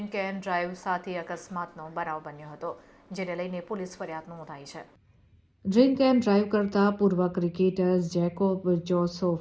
એન્ડ ડ્રાઈવ સાથે અકસ્માતનો બનાવ બન્યો હતો, જેને લઈને પોલીસ ફરિયાદ નોંધાઈ છે. ડ્રિંક એન્ડ ડ્રાઈવ કરતા પૂર્વ ક્રિકેટર જેકોબ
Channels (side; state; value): both; identical; correlation 1.00